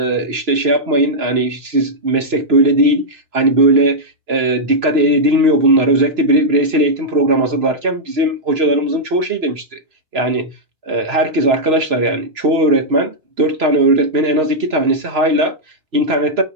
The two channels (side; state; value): left; late; 3.0 ms